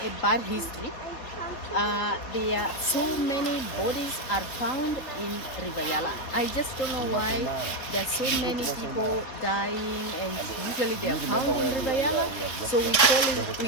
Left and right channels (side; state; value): right; late; 4.0 ms